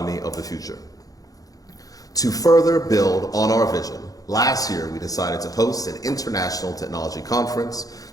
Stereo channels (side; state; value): right; late; 0.17 ms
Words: of the future. To further build on our vision, last year we decided to host an international technology conference